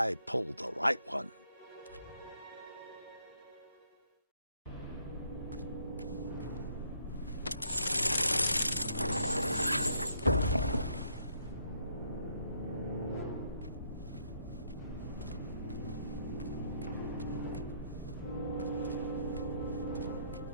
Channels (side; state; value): both; inverted; correlation -0.69